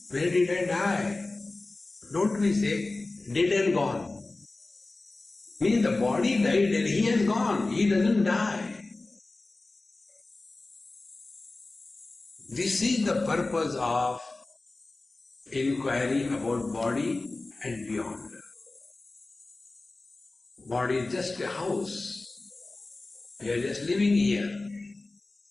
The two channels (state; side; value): quieter; right; 3.2 dB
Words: Where did I die? Don't we say, dead and gone? Means the body died and he has gone, he doesn't die. This is the purpose of inquiry about body and beyond. Body is just a house. We are just living here.